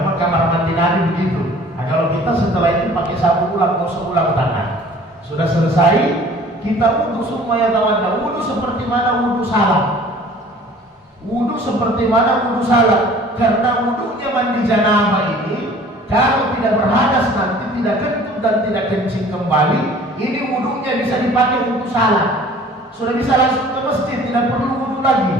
memang kamar mandi Nabi begitu. Nah, kalau kita setelah itu pakai sabun ulang, gosok ulang tangan. Sudah selesai, kita wudu semuanya tawadda. Wudu seperti mana wudu salat. Wudu seperti mana wudu salat. Karena wudunya mandi janabah ini, kalau tidak berhadas nanti tidak kentut dan tidak kencing kembali, ini wudunya bisa dipakai untuk salat. Sudah bisa langsung ke masjid, tidak perlu wudu lagi.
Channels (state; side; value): normal; both; correlation 0.49